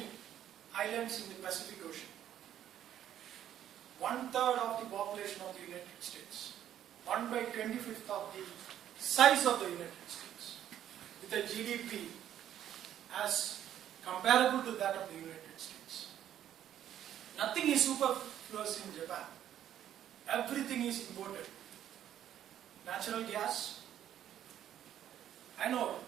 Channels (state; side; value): quieter; left; 11.0 dB